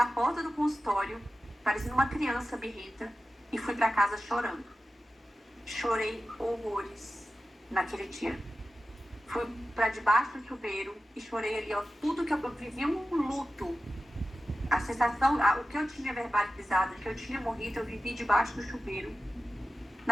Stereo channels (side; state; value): both; normal; correlation 0.93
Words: porta do consultório, parecendo uma criança birrenta, e fui pra casa chorando. Chorei horrores naquele dia. Fui pra debaixo do chuveiro e chorei ali, ó, tudo que eu vivi um luto. A sensação, o que eu tinha verbalizado, que eu tinha morrido, eu vivi debaixo do chuveiro